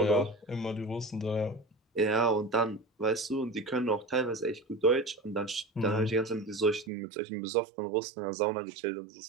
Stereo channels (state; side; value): drops out; left; at 6.9 s